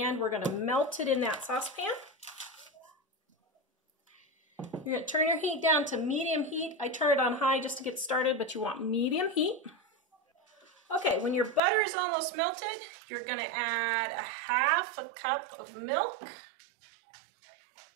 we're going to melt it in that saucepan. You're going to turn your heat down to medium heat. I turn it on high just to get started, but you want medium heat. Okay, when your butter is almost melted, you're going to add a 1/2 cup of milk.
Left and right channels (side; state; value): left; drops out; at 11.6 s